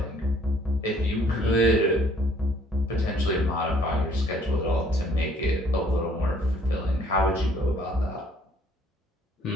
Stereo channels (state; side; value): normal; both; correlation 0.60